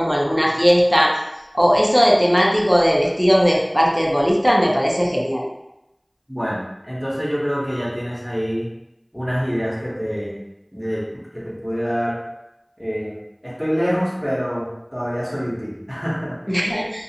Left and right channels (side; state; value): both; identical; correlation 1.00